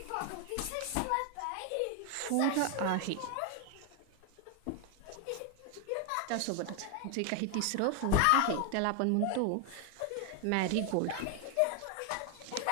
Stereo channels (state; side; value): different; both; correlation 0.00